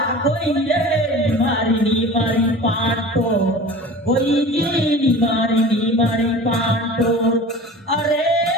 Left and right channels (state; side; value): normal; both; correlation 0.38